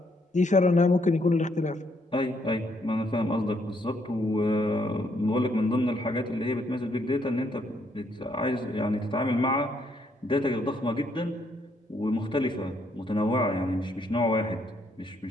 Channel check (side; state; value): both; normal; correlation 0.72